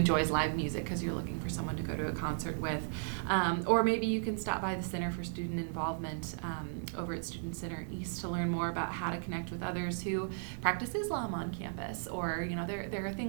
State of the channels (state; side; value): silent; left; digital silence